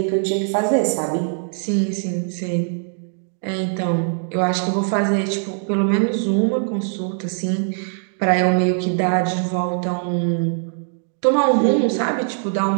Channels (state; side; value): silent; left; 65 dB below the other